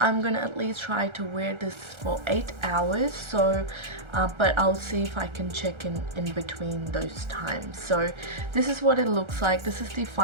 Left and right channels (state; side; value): late; left; 1.3 ms